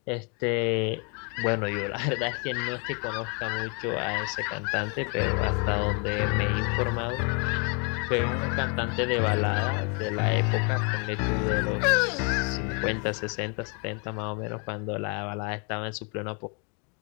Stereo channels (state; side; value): quieter; right; 35.8 dB